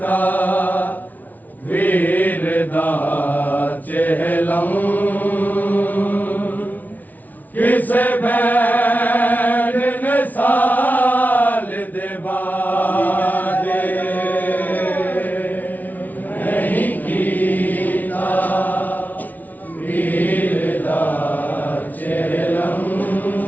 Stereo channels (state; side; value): late; right; 0.078 ms